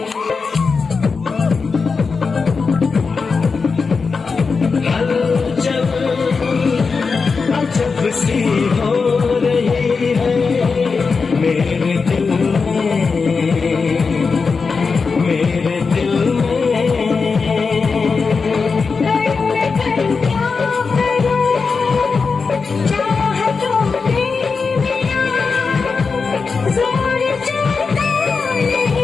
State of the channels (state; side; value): quieter; right; 4.9 dB